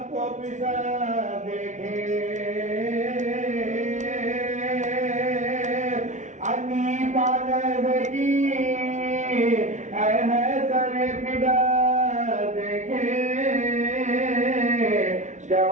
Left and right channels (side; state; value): left; late; 0.35 ms